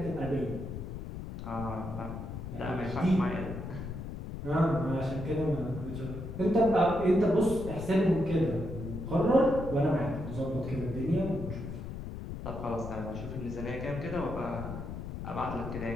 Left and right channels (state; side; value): noise; left; rumble, 7 dB below the sound